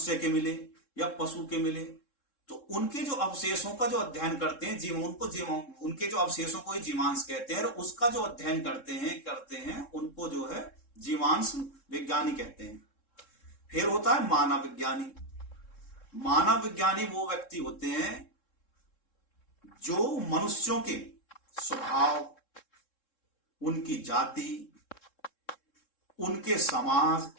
के मिले या पशु के मिले, तो उनके जो अवशेषों का जो अध्ययन करते हैं उनके जो अवशेषों को ही जीवांश कहते हैं। और उसका जो अध्ययन करते हैं उनको जो है जीवांश विज्ञानी कहते हैं। फिर होता है मानव विज्ञानी। मानव विज्ञानी वो व्यक्ति होते हैं जो मनुष्यों के स्वभाव, उनकी जाति, उनके समाज,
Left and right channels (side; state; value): right; late; 3.7 ms